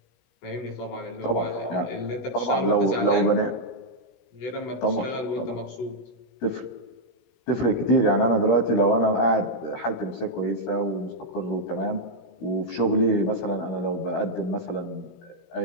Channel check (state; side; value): late; right; 17 ms